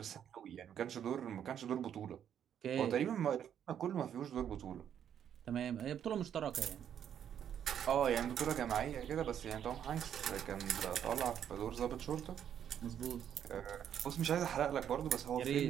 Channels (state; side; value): quieter; left; 9.3 dB